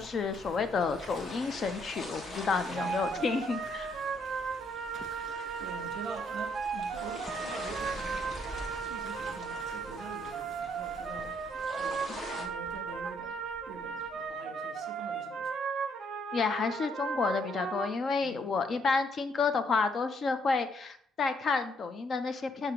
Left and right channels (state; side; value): normal; both; correlation 0.70